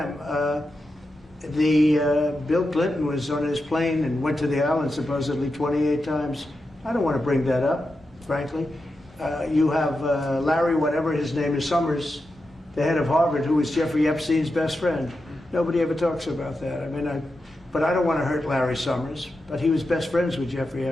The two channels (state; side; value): normal; both; correlation 0.89